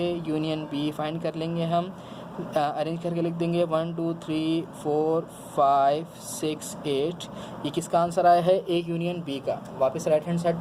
union B find कर लेंगे हम, अरेंज करके लिख देंगे 1 2 3 4 5 6 8। ये किसका आंसर आया है? ए यूनियन बी का। वापस राइट हैंड साइड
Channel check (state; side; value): identical; both; correlation 1.00